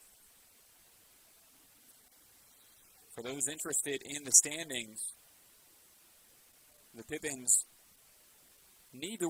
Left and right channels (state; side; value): identical; both; correlation 1.00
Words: For those interested in the standings, the Pippins need to